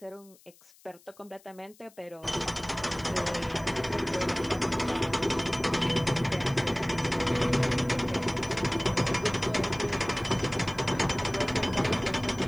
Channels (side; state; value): left; noise; hiss, 27 dB below the sound